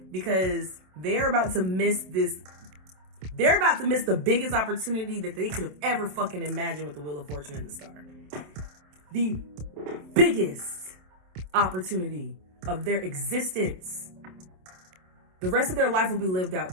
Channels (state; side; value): late; left; 27 ms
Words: Because they're about to miss this. They're about to miss the biggest opportunity that they could have ever fucking imagined with the Wheel of Fortune and the Star. The biggest opportunity of their existence. The rest of their life will be lived out